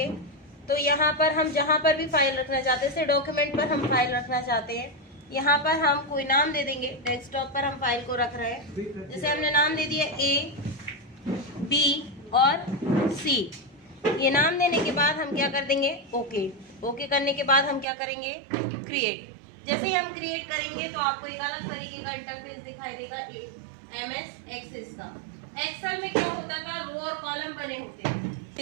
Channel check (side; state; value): left; drops out; at 17.9 s